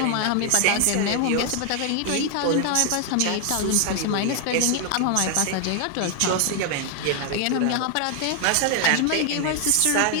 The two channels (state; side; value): different; both; correlation 0.00